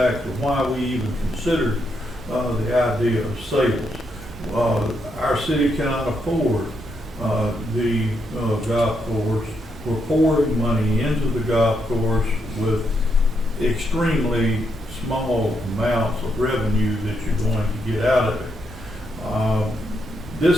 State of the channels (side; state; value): both; normal; correlation 0.79